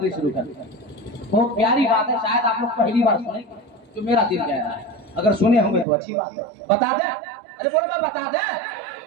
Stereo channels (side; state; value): left; drops out; at 5.9 s